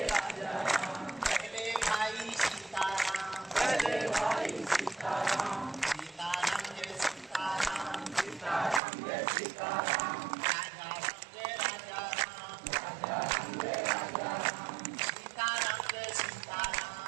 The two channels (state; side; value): drops out; left; at 8.8 s